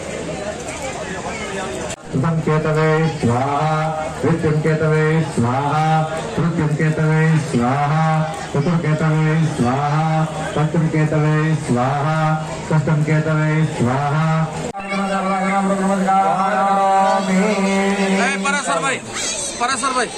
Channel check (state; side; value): identical; both; correlation 1.00